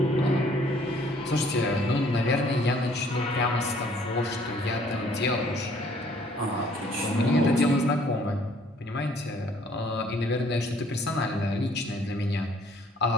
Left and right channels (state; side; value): normal; both; correlation 0.60